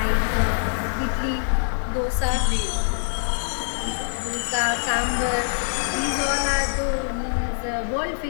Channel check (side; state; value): right; silent; 62 dB below the other